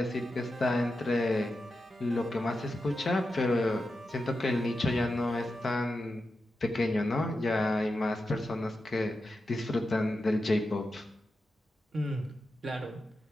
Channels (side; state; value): both; normal; correlation 0.90